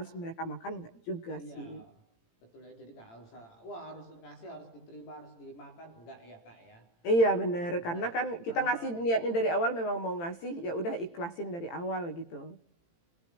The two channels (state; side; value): late; right; 18 ms